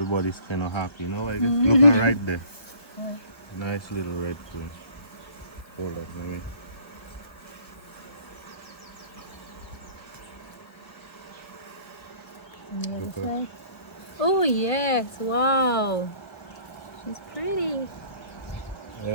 kind of happy, you know. I guess looking right there, nice little red queen. Hold up, let me. Look up. Oh yes, wow. She's pretty.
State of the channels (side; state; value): right; late; 1.3 ms